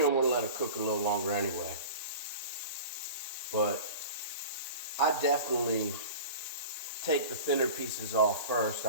want to let it cook a little longer anyway. But I definitely take the thinner pieces off first.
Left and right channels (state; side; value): inverted; both; correlation -0.36